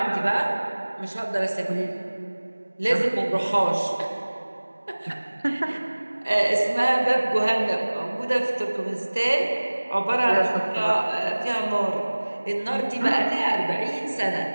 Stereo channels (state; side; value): inverted; both; correlation -1.00